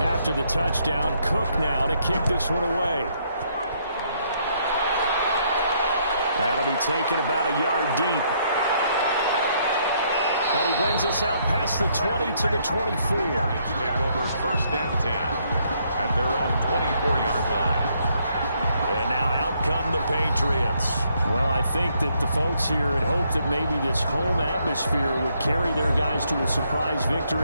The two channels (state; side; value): inverted; both; correlation -0.71